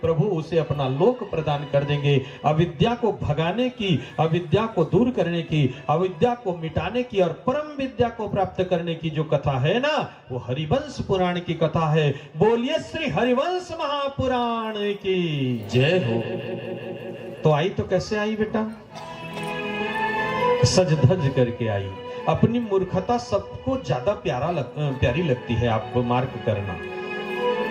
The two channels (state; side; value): identical; both; correlation 1.00